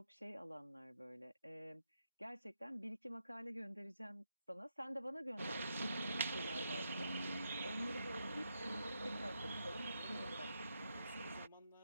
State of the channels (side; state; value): both; inverted; correlation -0.83